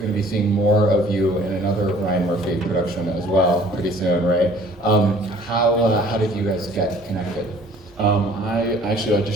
to be seeing more of you in another Ryan Murphy production as well pretty soon, right? How did you guys get connected? I actually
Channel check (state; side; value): normal; both; correlation 0.53